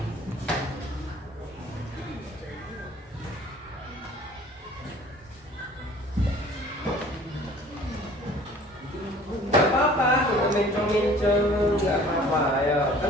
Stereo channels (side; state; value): both; normal; correlation 0.50